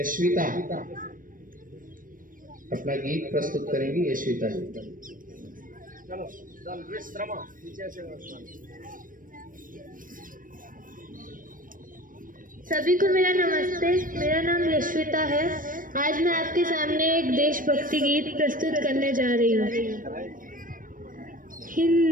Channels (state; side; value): late; left; 0.40 ms